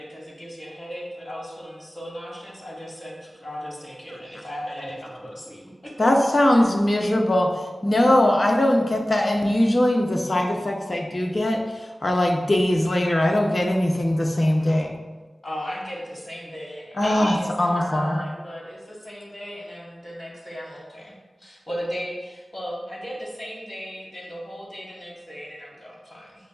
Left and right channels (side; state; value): both; normal; correlation 0.96